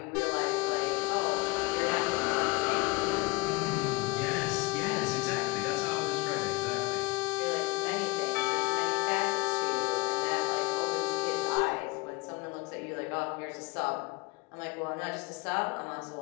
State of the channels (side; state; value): right; quieter; 24.2 dB